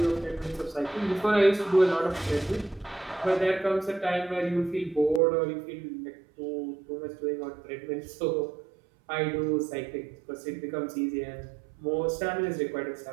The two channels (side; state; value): left; drops out; at 5.2 s